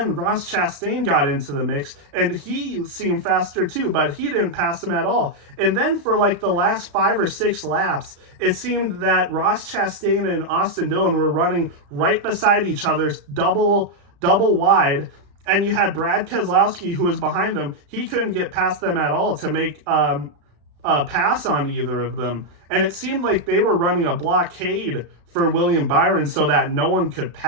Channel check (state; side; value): late; left; 35 ms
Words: Ross Chastain got into the mix, and he seemed faster too, but he didn't pass him at all. And then for like the last 5 or 6 laps, it seemed that Ross Chastain and Austin Dillon were running right beside each other, double wide. And you had Brad Keselowski, who was behind them. He couldn't get past them at all to make a pass on either of them. And it seemed like they were running a blockade for William Byron so that no one could